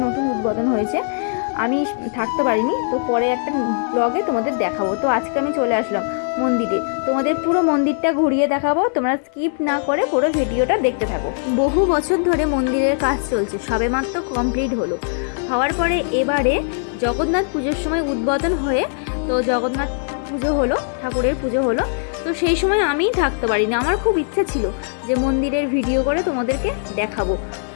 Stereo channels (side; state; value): right; silent; 66 dB below the other